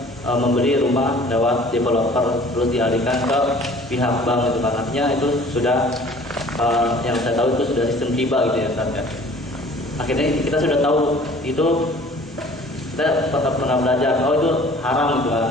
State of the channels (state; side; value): normal; both; correlation 0.50